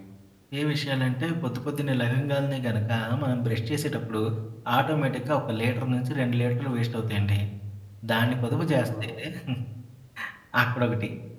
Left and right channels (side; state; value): both; identical; correlation 1.00